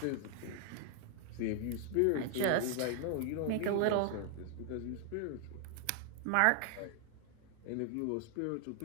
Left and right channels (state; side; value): different; both; correlation 0.00